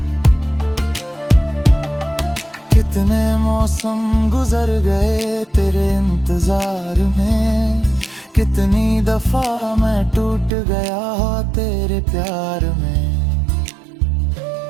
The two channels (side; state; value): left; drops out; at 10.5 s